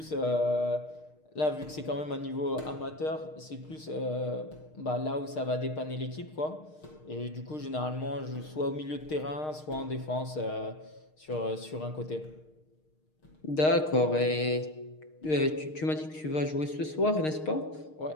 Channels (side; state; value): right; late; 6.5 ms